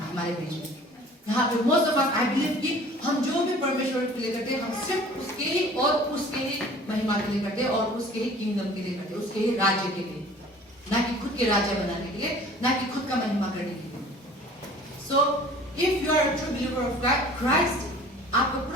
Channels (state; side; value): normal; both; correlation 0.47